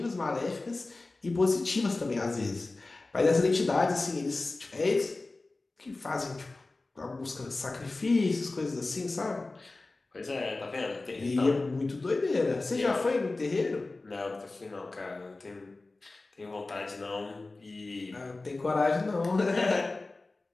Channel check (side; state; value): right; quieter; 3.3 dB